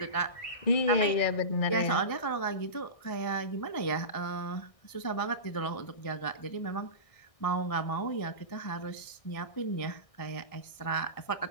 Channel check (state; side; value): late; right; 1.6 ms